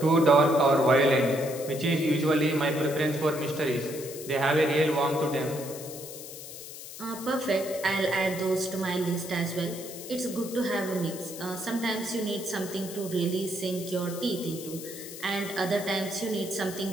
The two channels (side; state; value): left; noise; hiss, 12 dB below the sound